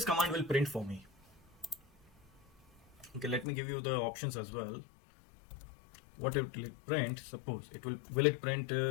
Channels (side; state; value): right; drops out; at 3.5 s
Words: command will print for me. Okay, let me give you the options as well. What it will print? Suppose it will it print